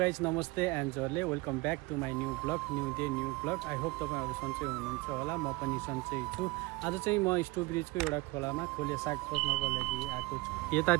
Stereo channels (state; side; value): quieter; left; 23.1 dB